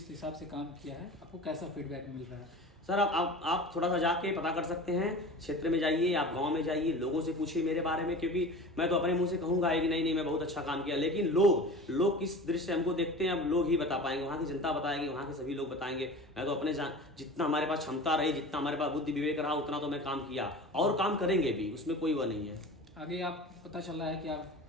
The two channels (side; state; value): both; normal; correlation 0.36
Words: हिसाब से काम किया है, आपको कैसा फीडबैक मिल रहा है? सर आप थोड़ा सा जाके पता कर सकते हैं, क्षेत्र में जाइए, आप गांव में जाइए, लोगों से पूछिए मेरे बारे में, क्योंकि मैं तो अपने मुंह से कहूंगा कि नहीं मैं बहुत अच्छा काम किया, लेकिन लोग किस दृष्टि से हमको देखते हैं अब लोग ही बता पाएंगे, वहाँ की जनता बताएगी, वहाँ के सभी लोग बताएंगे। मैं तो अपने जितना हमारे पास क्षमता रही, जितना हमारे पास बुद्धि विवेक रहा, उतना तो मैं काम किया और काम करेंगे भी, उसमें कोई वो नहीं है। आगे आप पता चल रहा है कि आप